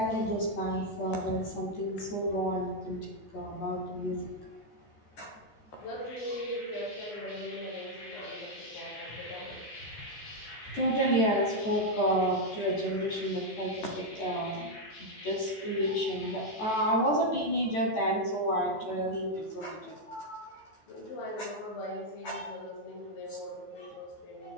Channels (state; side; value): late; right; 14 ms